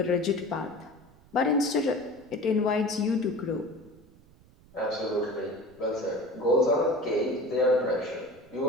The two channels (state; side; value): noise; right; rumble, 26 dB below the sound